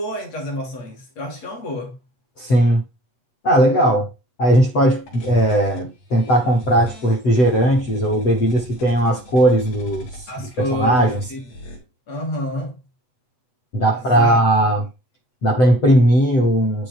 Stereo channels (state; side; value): late; right; 7.9 ms